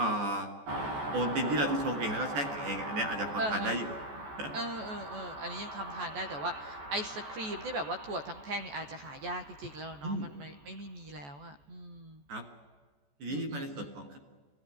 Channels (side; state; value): left; late; 14 ms